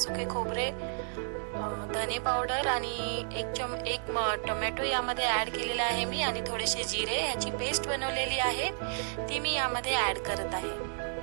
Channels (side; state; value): left; silent; digital silence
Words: खोबरे, धने पावडर आणि एक टोमॅटो यामध्ये ऍड केलेला आहे मी, आणि थोडेसे जिरे याची पेस्ट बनवलेली आहे, ती मी यामध्ये ऍड करत आहे।